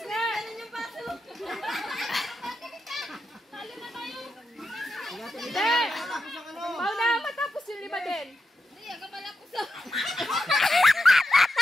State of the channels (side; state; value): both; normal; correlation 0.87